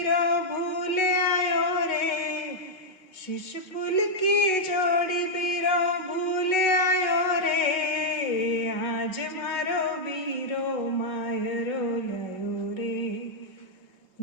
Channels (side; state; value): right; late; 5.3 ms